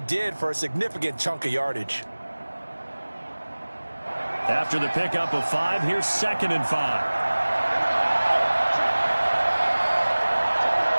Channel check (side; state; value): both; inverted; correlation -1.00